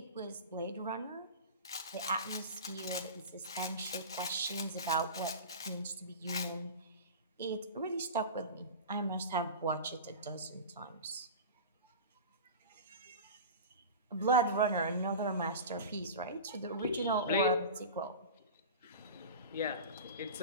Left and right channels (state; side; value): inverted; both; correlation -0.31